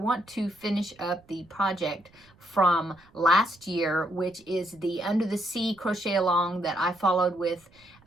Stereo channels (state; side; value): noise; right; rumble, 29 dB below the sound